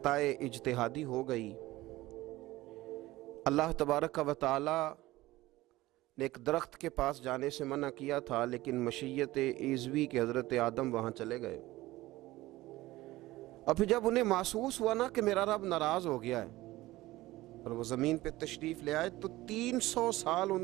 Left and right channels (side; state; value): left; quieter; 17.8 dB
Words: اجتہادی ہو گئی۔ اللہ تبارک و تعالی نے ایک درخت کے پاس جانے سے منع کیا تھا، لیکن مشیت عزوی کے حضرت آدم وہاں چلے گئے، اور پھر جب انہیں محسوس ہوا نا کہ میرا رب ناراض ہو گیا ہے اور وہ زمین پہ تشریف لے آئے، تو 300 سال